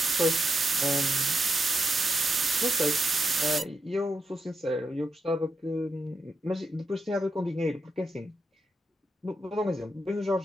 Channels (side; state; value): both; normal; correlation 0.85